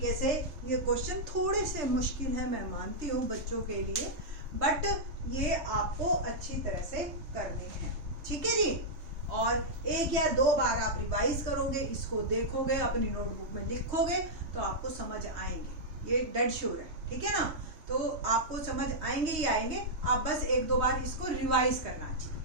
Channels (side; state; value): left; late; 3.2 ms